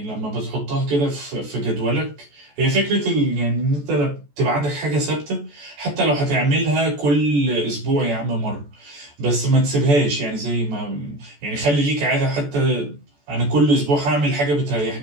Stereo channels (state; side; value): late; left; 14 ms